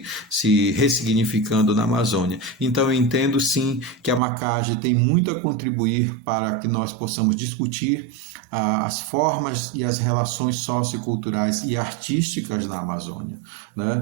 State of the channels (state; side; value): drops out; left; at 4.2 s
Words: ressignificando na Amazônia. Então eu entendo sim que a Macage tem muito a contribuir para que nós possamos discutir as formas e as relações socioculturais e artísticas na Amazônia, né?